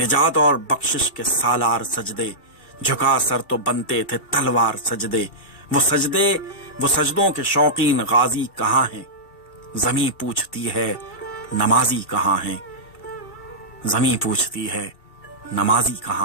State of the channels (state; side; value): late; right; 2.7 ms